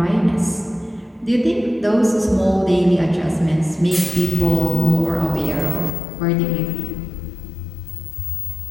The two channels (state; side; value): drops out; right; at 6.0 s